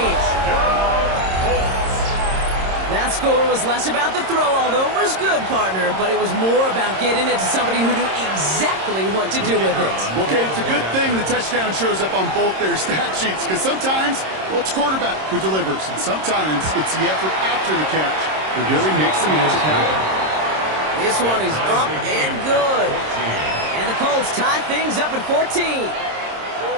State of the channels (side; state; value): left; late; 26 ms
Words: That score was less about the throw, although it was good, partner, but it was more about getting it to somebody who knew exactly what to do with it. Okay, it's a good thing the touchdown shows up on both their stat sheets because sometimes, well, it's quarterback who delivers, and sometimes it's the effort after the catch that really makes the magic happen. This one is up and good. And the Colts tie things up at 14.